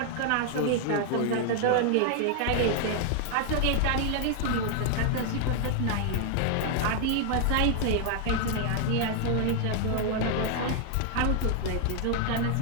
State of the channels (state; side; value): different; both; correlation 0.00